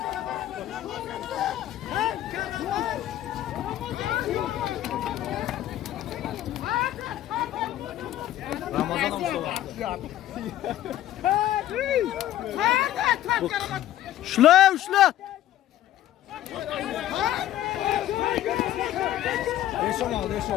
Ramazan Şula şula. Eşon aldı,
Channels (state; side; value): quieter; right; 13.0 dB